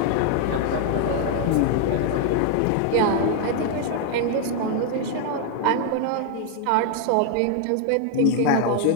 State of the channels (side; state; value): both; different; correlation 0.00